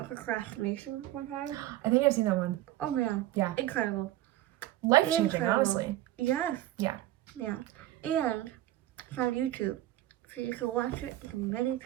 procrastination one time. I think I've seen that one. Oh man. Yeah. Incredible. life-changing, Incredible. honestly. Yes. Yeah. Yeah. And it's on YouTube, so you can watch it as many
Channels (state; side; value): quieter; left; 14.7 dB